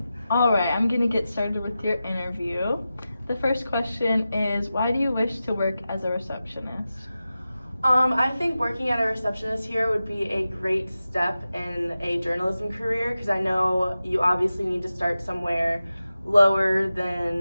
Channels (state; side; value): inverted; both; correlation -0.93